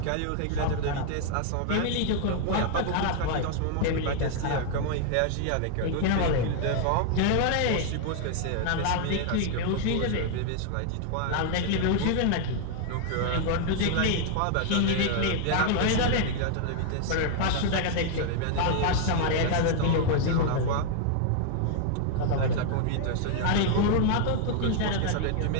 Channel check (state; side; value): different; both; correlation 0.00